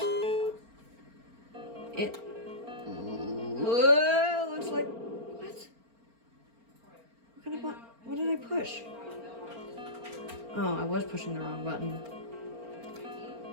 It looks like... What? What kind of button? What did I push? Oh, I was pushing the wrong button.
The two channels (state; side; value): late; left; 4.4 ms